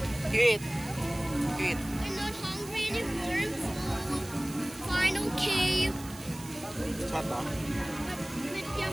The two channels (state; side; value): noise; right; hiss, 16 dB below the sound